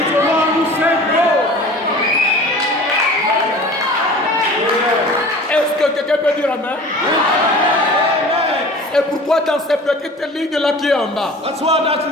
the one who sent Paul. Est-ce que quelqu'un peut dire amen? Et pourquoi dans cette petite ligne-là qui est en bas? That's why that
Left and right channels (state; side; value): normal; both; correlation 0.41